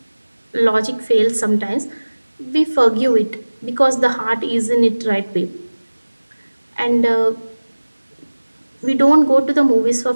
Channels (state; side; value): inverted; both; correlation -1.00